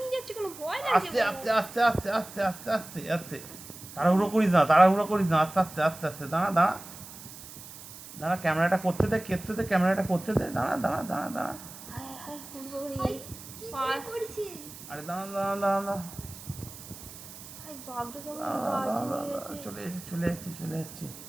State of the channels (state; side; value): noise; right; hiss, 15 dB below the sound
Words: যাচ্ছে কেন, ভয় লাগছে আস্তে গো। আস্তে আস্তে আস্তে আস্তে আস্তে আস্তে আস্তে। তাড়াহুড়ো করিস না তাড়াহুড়ো করিস না আস্তে আস্তে আস্তে আস্তে দাঁড়া দাঁড়া। দাঁড়া ক্যামেরাটা করতে দে ক্যামেরাটা করতে দে দাঁড়া দাঁড়া দাঁড়া দাঁড়া। হায় হায় ওরে বাবা রে। ভাই, কি করে করছে? আরে দাঁড়া দাঁড়া দাঁড়া দাঁড়া হায় বাঘটা কেমন দাঁড়া কাছে দাঁড়া নিয়ে দাঁড়া গেছে। চলে যাচ্ছে চলে যাচ্ছে চলে যাচ্ছে।